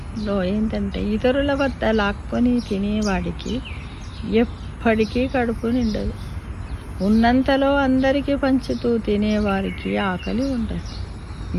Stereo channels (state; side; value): identical; both; correlation 1.00